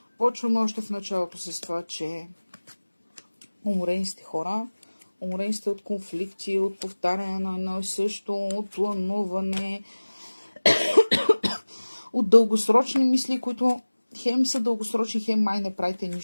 Почваме още в началото с това, че уморени сте хора, уморени сте от конфликти, от повтаряне на едно и също, от плануване, от дългосрочни мисли, които хем са дългосрочни, хем май не правите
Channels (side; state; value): both; inverted; correlation -1.00